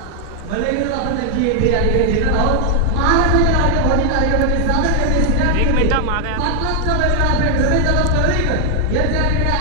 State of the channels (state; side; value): different; both; correlation 0.00